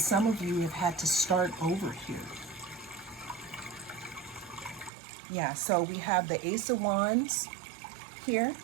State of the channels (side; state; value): left; drops out; at 4.9 s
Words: of you have had to start over here. Yeah, so we have the Ace of Wands here,